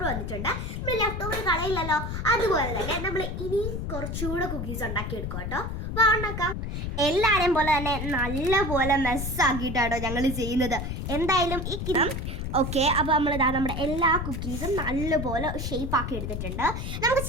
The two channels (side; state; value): left; noise; rumble, 4 dB below the sound